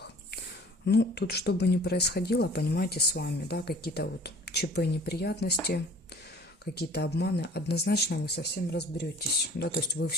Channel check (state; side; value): normal; both; correlation 0.49